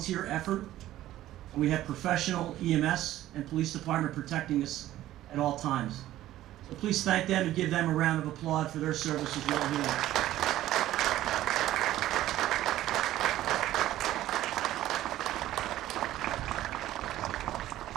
effort. And we have professional EMS and police department protecting us at all times. So please thank them and give them a round of applause for their service as well here.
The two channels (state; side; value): quieter; left; 14.1 dB